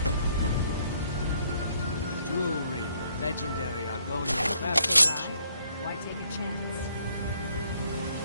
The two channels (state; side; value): inverted; both; correlation -0.68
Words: Jewelry with legendary Argonian craftsmanship. Why take a chance?